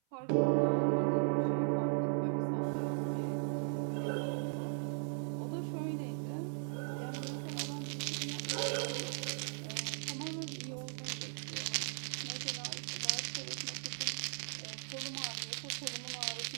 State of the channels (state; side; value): silent; left; 53 dB below the other